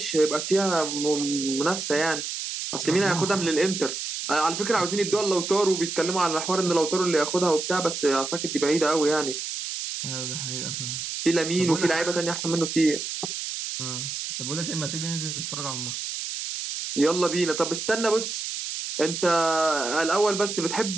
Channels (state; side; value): noise; right; hiss, 5 dB below the sound